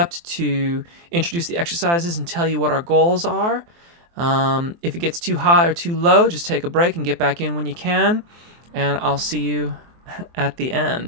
to introduce the exercises and tell you what our goals are. If it gets too high or too low, just take a break and get back in when you can, and I'll see you at the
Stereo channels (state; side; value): late; left; 23 ms